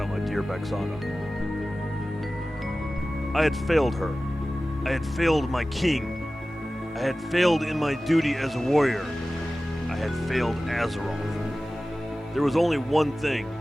my dear Bexana. I had failed her. I had failed my king. I had failed in my duty as a warrior. I had failed Azeroth. There was only one thing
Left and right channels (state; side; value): normal; both; correlation 0.96